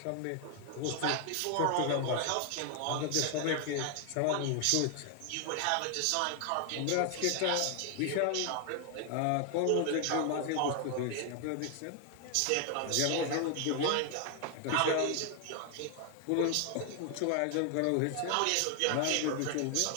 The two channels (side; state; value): both; different; correlation 0.00